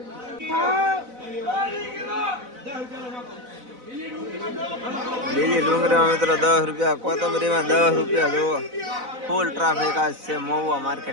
લીલી ડુંગળીમાં મિત્રો 10 રૂપિયા કોથમરીમાં 10 રૂપિયા જુઓ ફૂલ ટ્રાફિક આજ છે મહુવા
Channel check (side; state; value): left; late; 4.0 ms